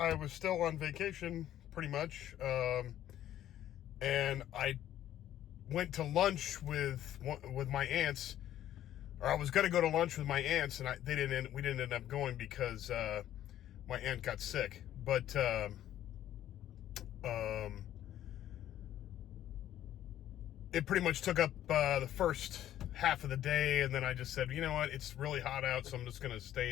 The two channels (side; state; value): right; quieter; 12.1 dB